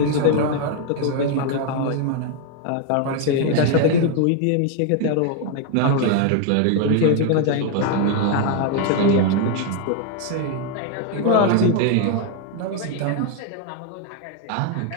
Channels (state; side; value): different; both; correlation 0.00